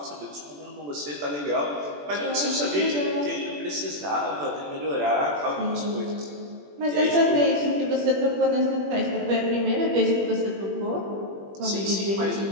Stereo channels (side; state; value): left; late; 21 ms